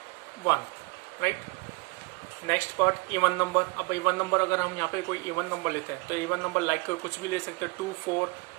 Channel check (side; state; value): left; quieter; 27.6 dB